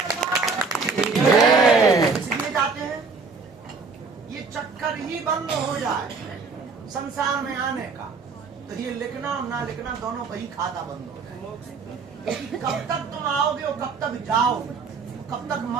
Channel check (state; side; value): quieter; left; 4.6 dB